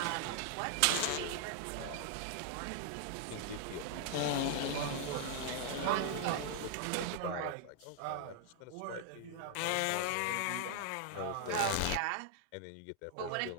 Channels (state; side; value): different; both; correlation 0.00